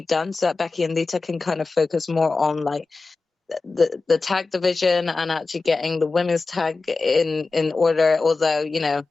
done so that Becky and Lita can kind of focus more on like the tag division and actually getting the women's tag in order. Although, you know,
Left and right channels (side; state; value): right; quieter; 3.8 dB